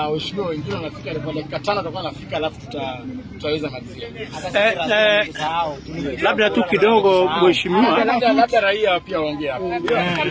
wengine wanafika kwa dakika 5 tutakuwa anafika alafu tutaweza malizia. Labda tu kidogo mheshimiwa, labda raia pia waongee hapa.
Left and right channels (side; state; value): both; identical; correlation 1.00